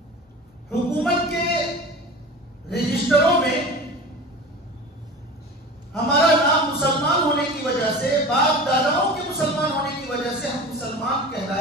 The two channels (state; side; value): normal; both; correlation 0.35